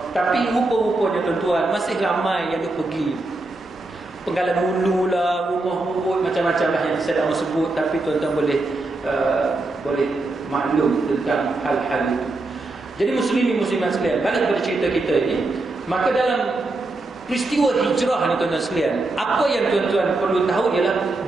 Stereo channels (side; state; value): left; quieter; 3.0 dB